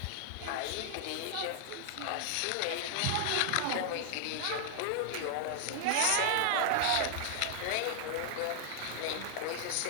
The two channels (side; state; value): both; different; correlation 0.00